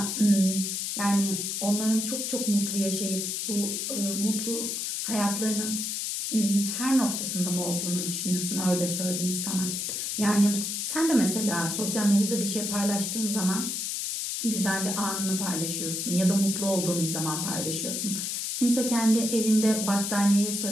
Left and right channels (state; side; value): noise; left; hiss, 2 dB below the sound